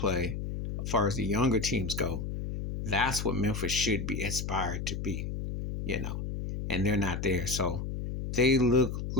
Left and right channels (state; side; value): noise; left; hum, 4 dB below the sound